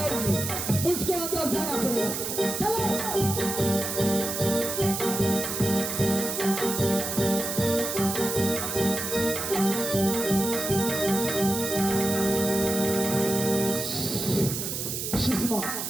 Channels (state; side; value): noise; right; hiss, 4 dB below the sound